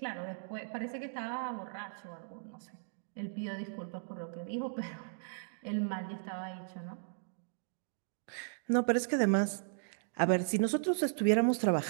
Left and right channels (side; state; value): left; silent; digital silence